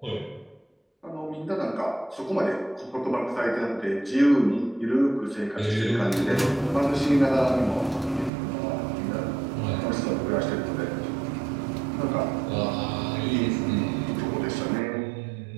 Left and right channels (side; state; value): left; drops out; at 8.3 s